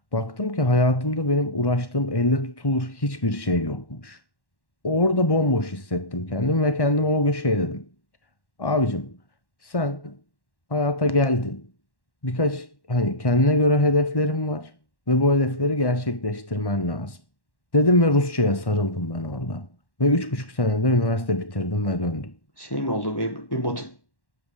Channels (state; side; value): late; right; 1.1 ms